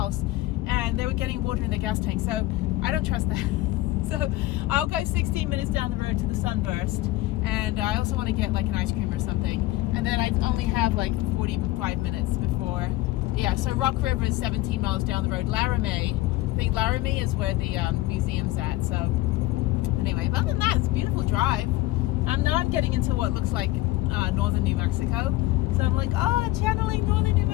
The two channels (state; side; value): quieter; right; 17.7 dB